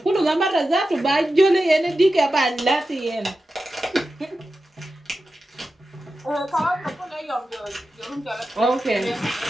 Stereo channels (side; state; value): both; normal; correlation 0.92